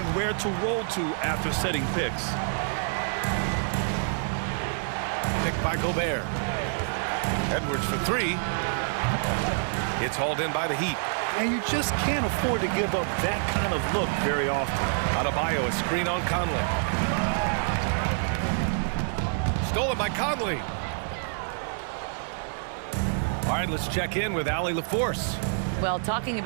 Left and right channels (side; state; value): left; silent; digital silence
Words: where to roll to after setting picks. Picked by Gobert. Edwards for 3. It's hauled in by the Heat. And you just can't afford to give up that kind of look very often. Adebayo, a screen on Conley. Stolen by Conley. All right, let's check in with Allie LaForce. Well, talking